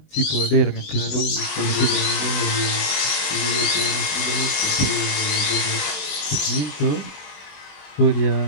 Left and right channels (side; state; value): right; late; 20 ms